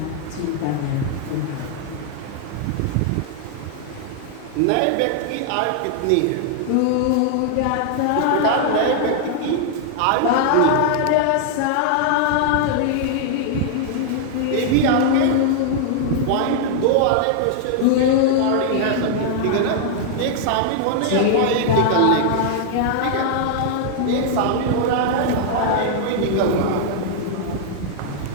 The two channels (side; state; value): both; different; correlation -0.01